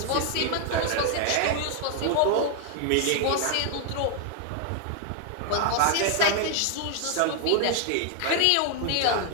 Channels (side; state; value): both; different; correlation 0.00